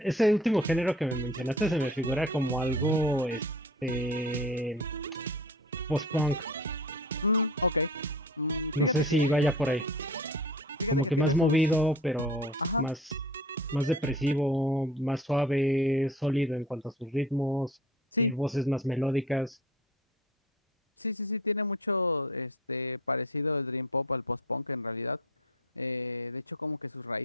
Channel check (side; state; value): both; normal; correlation 0.40